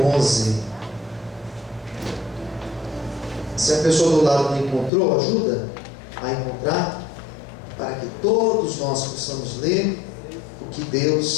11. Se a pessoa do lado não encontrou, ajuda a encontrar, para que todos nós possamos ler o que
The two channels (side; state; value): right; drops out; at 4.9 s